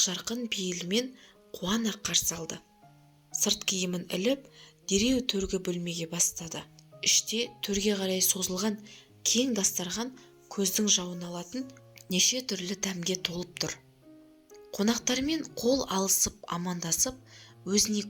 пейілмен қуана қарсы алды. Сырт киімін іліп, дереу төргі бөлмеге бастады. Іште төрге қарай созылған кең дастархан көздің жауын алатын неше түрлі дәмге толып тұр. Қонақтармен қол алысып амандасып, өзіне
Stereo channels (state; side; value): identical; both; correlation 1.00